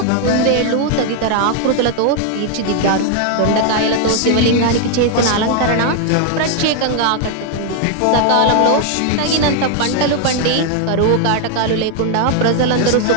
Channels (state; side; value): different; both; correlation 0.00